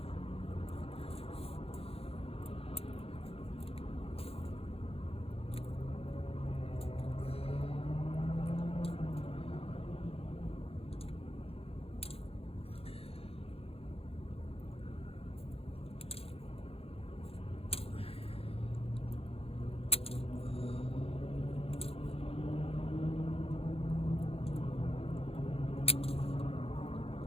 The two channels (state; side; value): late; right; 0.28 ms